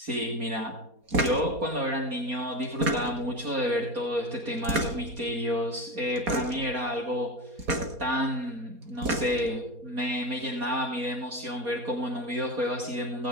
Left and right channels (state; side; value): late; left; 4.2 ms